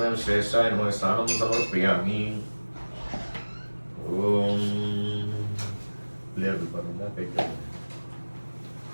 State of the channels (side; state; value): both; inverted; correlation -1.00